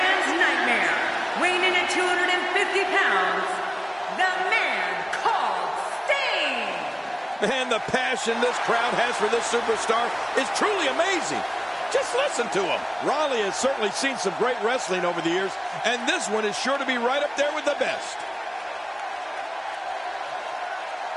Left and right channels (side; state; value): both; identical; correlation 1.00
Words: nightmare, weighing in at 250 pounds, the man called Sting! Man, the passion this crowd has for this superstar is truly amazing. Just listen to him. Raleigh has certainly seen some great wrestling over the years, and this one is sure to be right up there with the best.